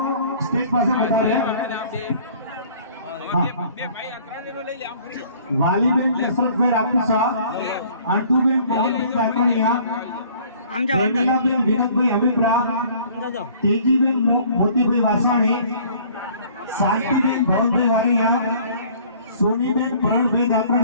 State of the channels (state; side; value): inverted; both; correlation -0.54